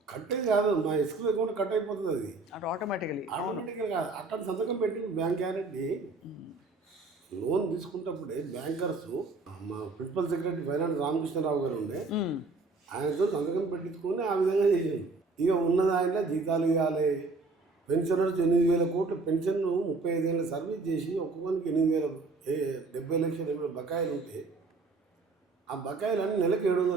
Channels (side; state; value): left; quieter; 3.7 dB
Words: కట్టేది కాదు, మా ఎస్క్రూ అకౌంట్ కట్ అయిపోతుంది. అది ఆటోమేటిక్గా కాదు, అట్లా సంతకం పెట్టి బ్యాంక్ గ్యారెంటీ లోన్ తీసుకున్నప్పుడే బ్యాంకర్స్ మా ప్రిన్సిపల్ సెక్రటరీ ఫైనాన్స్ రామకృష్ణరావు గారు ఉండే, ఆయనతో సంతకం పెట్టించుకొని ఆ విధంగా చేసాడు. ఇక ఉన్నది ఆయన జీతాలు ఇవ్వాలి. పెన్షనర్స్ 8,000 కోట్లు పెన్షన్ 35 ఏళ్ళ సర్వీస్ చేసి ఒక్కొక్కరికి 70 లక్షల బకాయిలు ఉంటే ఆ బకాయిలన్నీ నెలకు